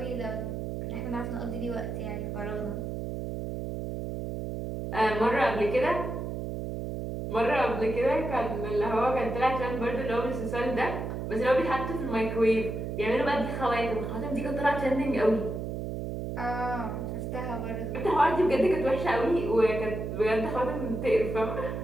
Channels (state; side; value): noise; right; hum, 5 dB below the sound